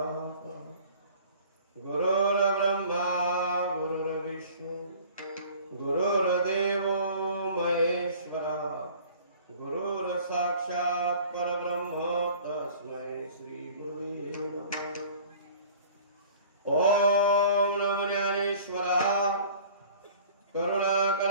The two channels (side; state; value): both; inverted; correlation -0.47